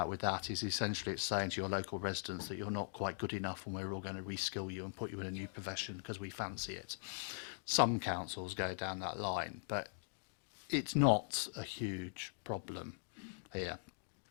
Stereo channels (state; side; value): silent; right; digital silence